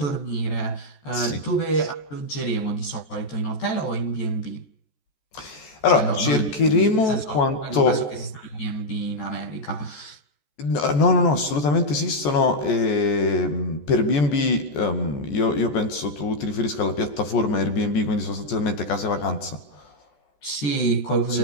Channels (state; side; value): late; right; 14 ms